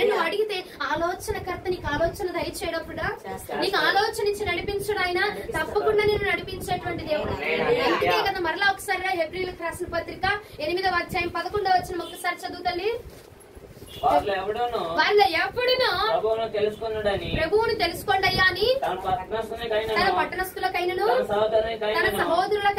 నువ్వు అడిగితే ఆలోచనకర్త నీకు ఆలోచన దయచేయడప్పుడు నీకు ఆలోచన ఇచ్చి నడిపించడు ఆయన. తప్పకుండా నేను నడిపించేటువంటి దేవుడు. అందుకే కదా మరలా ఒకసారి హెబ్రీయులకు రాసిన పత్రిక 8వ అధ్యాయం 11వ వచనం ఒకసారి చదువు తల్లి. వాళ్ళు ఎప్పుడును ప్రభువును తెలుసుకోండి అయ్యా అని తన పట్టణస్థులకైనను తన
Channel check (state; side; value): identical; both; correlation 1.00